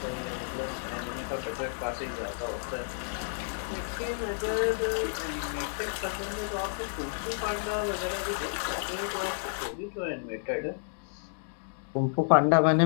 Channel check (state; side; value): silent; right; digital silence